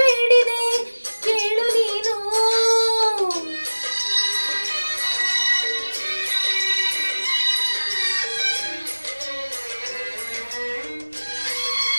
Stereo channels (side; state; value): both; inverted; correlation -1.00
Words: ಬೇಡಿದೆ ಕೇಳು ನೀನು